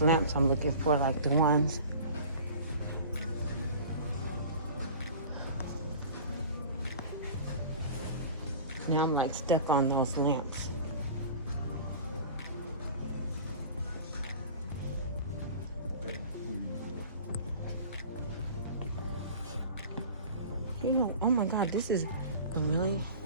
lamps I'm looking for, like the ones. Now I'm like stuck on those lamps. You know, oh my God, this is a really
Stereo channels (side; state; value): both; inverted; correlation -0.40